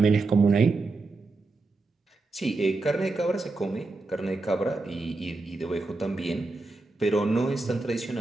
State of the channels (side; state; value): left; quieter; 3.4 dB